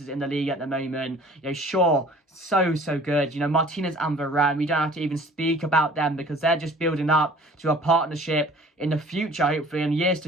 in the league at the moment. You know, Shaw, so good. You know, Martinez and Varane, we don't have to even speak about them, because they're just building up to a partnership in the future, hopefully, in years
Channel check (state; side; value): normal; both; correlation 0.49